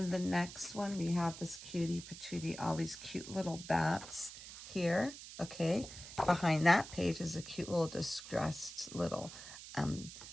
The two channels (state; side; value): noise; right; hiss, 13 dB below the sound